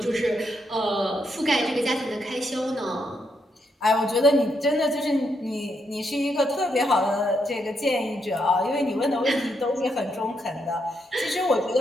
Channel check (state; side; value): normal; both; correlation 0.79